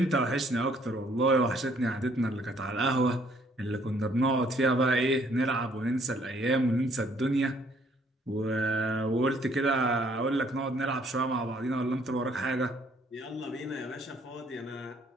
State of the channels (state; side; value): normal; both; correlation 0.64